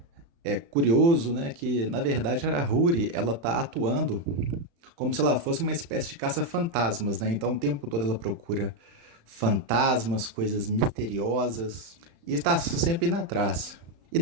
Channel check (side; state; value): left; late; 35 ms